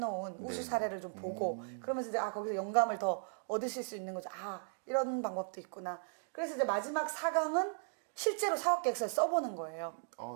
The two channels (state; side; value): silent; left; digital silence